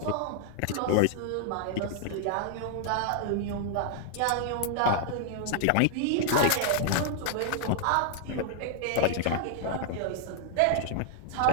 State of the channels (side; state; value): both; different; correlation -0.01